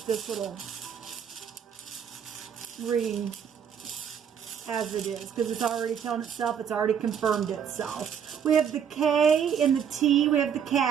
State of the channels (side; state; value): left; quieter; 7.9 dB